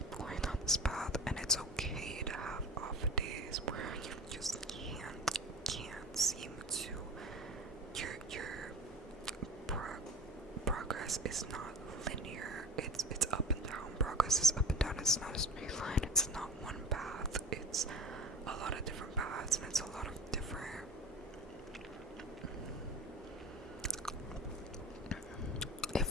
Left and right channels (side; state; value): both; normal; correlation 0.34